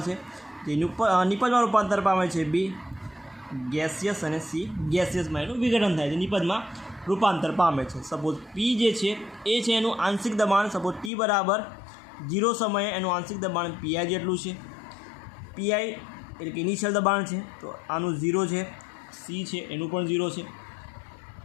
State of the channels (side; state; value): right; drops out; at 11.1 s